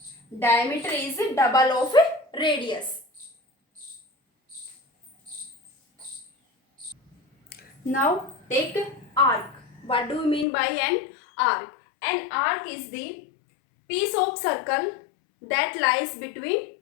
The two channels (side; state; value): right; drops out; at 10.5 s